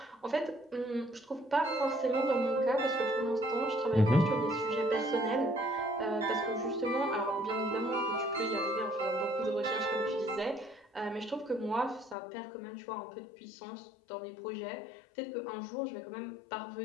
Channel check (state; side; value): drops out; right; at 12.2 s